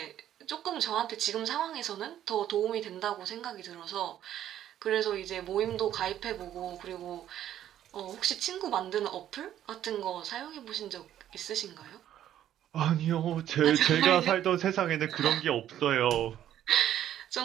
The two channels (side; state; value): left; quieter; 11.4 dB